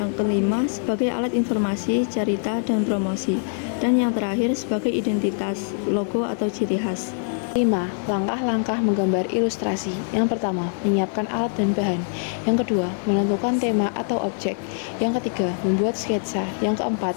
kelima, sebagai alat informasi, cerita, dan promosi. Dan yang terakhir, sebagai identitas, logo, atau ciri khas. 5. Langkah-langkah menggambar ilustrasi. Yang pertama, menyiapkan alat dan bahan. Yang kedua, menentukan tema atau objek. Yang ketiga, membuat sketsa. Yang keempat,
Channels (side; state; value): right; silent; digital silence